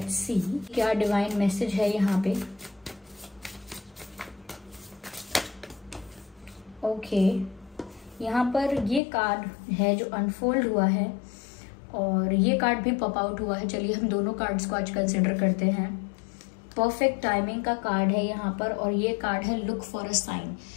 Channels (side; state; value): right; drops out; at 9.0 s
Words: सी क्या डिवाइन मैसेज है यहाँ पे। ओके, यहाँ पर ये कार्ड है जो अनफोल्ड हुआ है, और ये कार्ड भी पॉप आउट हुआ है। चलिए हम दोनों कार्ड्स को आज कंसिडर करते हैं। परफेक्ट टाइमिंग का कार्ड है यहाँ पर, और ये कार्ड है लुक फॉर अ साइन।